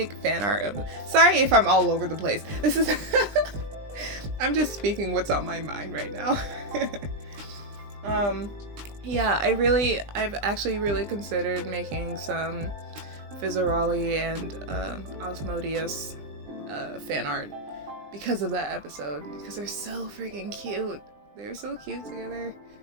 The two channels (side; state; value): left; late; 20 ms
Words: fan art of. Sorry if I'm all over the place. This is. I'm just speaking what's on my mind right now. Yeah, I've actually really considered making some Fizzaroli and Osmodius fan art because of that episode, because they're so freaking cute. They're so cute together.